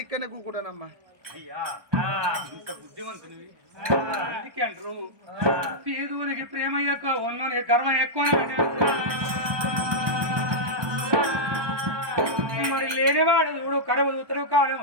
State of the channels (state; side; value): late; left; 1.2 ms